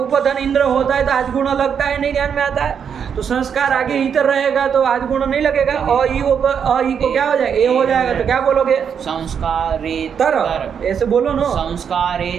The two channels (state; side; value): quieter; left; 7.4 dB